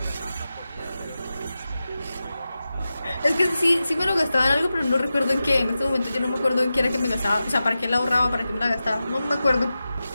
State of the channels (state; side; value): inverted; both; correlation -0.93